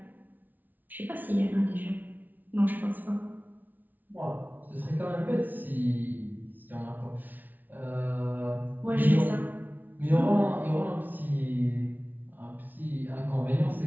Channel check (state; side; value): late; left; 0.083 ms